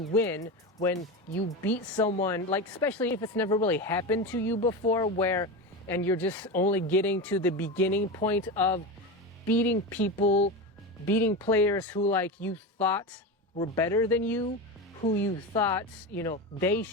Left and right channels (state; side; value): normal; both; correlation 0.21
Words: win, when you beat someone, like especially if it's never really happened to you before, and you're just only getting to the beginning point of beating people, beating players who like you thought were better than you, who you thought, they